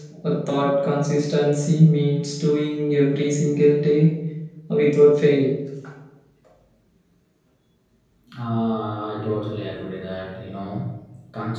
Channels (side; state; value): both; identical; correlation 1.00